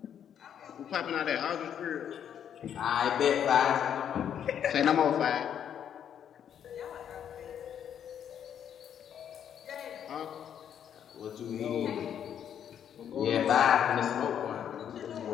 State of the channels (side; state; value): right; quieter; 9.1 dB